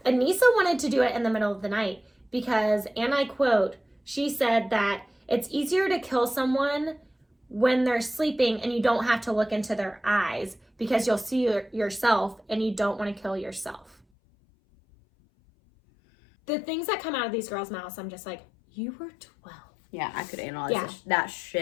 Anissa wanted to do it in the middle of the night because, and I quote, she said that it's easier to kill someone when they're sleeping and you don't have to look into their eyes because you'll see yourself and you don't want to kill yourself. The things that come out of these girls' mouths, I'm just like, you were 12. Yeah, I could analyze that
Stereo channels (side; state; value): right; drops out; at 14.0 s